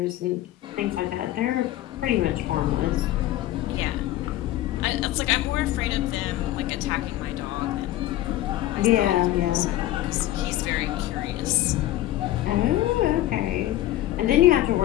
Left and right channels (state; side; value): quieter; right; 14.7 dB